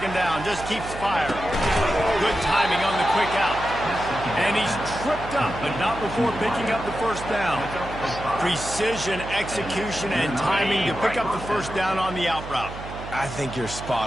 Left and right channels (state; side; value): noise; right; hum, 11 dB below the sound